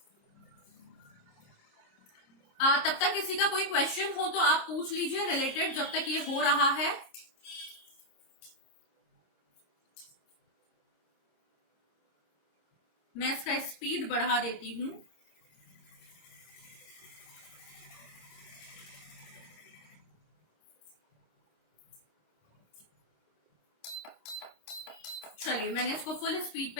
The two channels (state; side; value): late; right; 26 ms